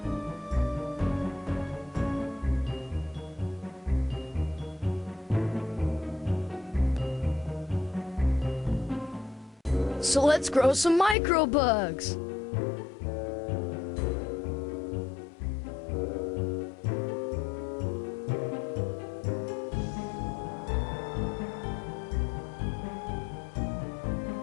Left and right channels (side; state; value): right; drops out; at 11.2 s